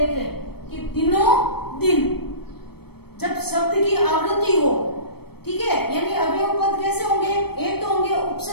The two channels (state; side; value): late; right; 0.97 ms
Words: कि दिनों दिन, जब शब्द की आवृत्ति हो, ठीक है, यानी अवयव पद कैसे होंगे, एक तो होंगे